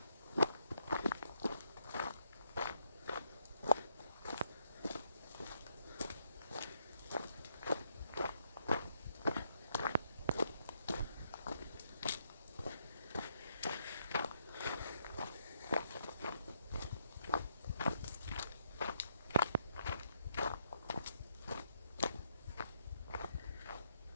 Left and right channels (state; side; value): inverted; both; correlation -0.75